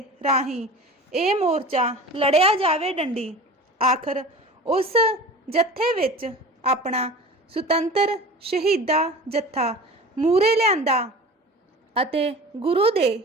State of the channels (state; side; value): normal; both; correlation 0.37